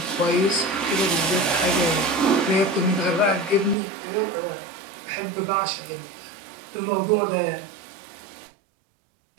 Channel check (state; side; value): drops out; left; at 3.8 s